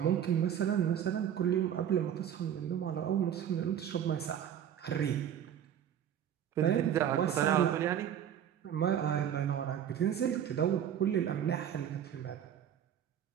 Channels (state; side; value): quieter; left; 9.6 dB